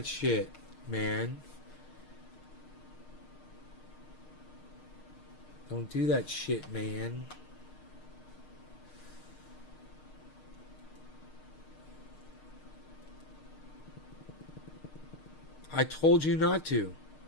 shit, man. Don't do that shit, man. I told you not to.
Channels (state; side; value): late; right; 6.5 ms